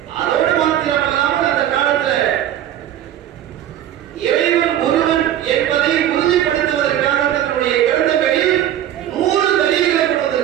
அதோடு மாத்திரமல்லாமல் அந்த காலத்துல இறைவன் ஒருவன் என்பதை உறுதிப்படுத்துவதற்காக தன்னுடைய கிரந்தங்களில் 100 தலீல்களை கொண்டு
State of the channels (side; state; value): left; quieter; 11.5 dB